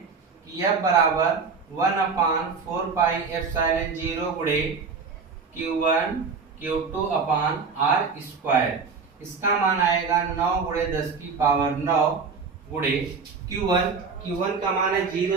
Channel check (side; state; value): left; quieter; 5.2 dB